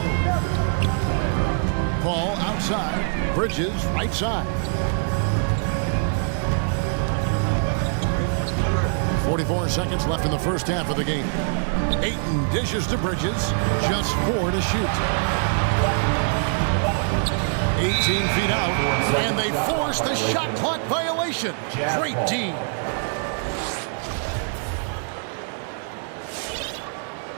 Paul outside. Bridges right side. 44 seconds left in the first half of the game. Ayton dishes to Bridges. Just 4 to shoot. 18 feet out. And they force the shot clock violation. Great D.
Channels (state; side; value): silent; left; 63 dB below the other